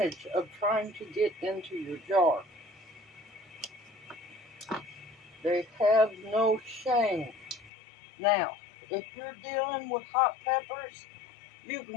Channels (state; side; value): drops out; right; at 7.7 s